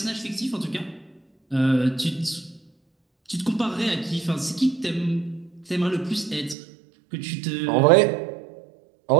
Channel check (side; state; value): left; drops out; at 6.6 s